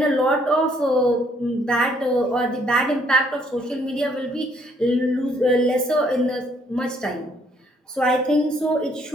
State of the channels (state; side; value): normal; both; correlation 0.66